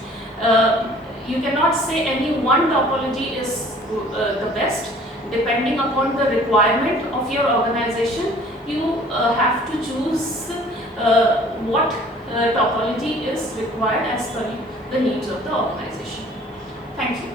You cannot say any one topology is the best. Depending upon the requirement of your organization, you have to choose what topology is required as per the needs of the organization. Thank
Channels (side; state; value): both; normal; correlation 0.52